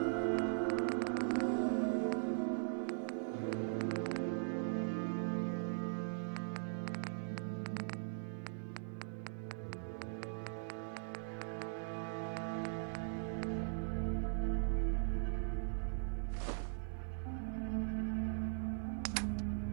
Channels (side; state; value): left; silent; 51 dB below the other